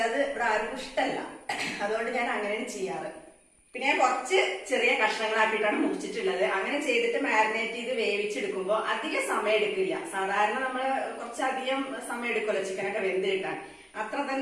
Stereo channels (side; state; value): both; identical; correlation 1.00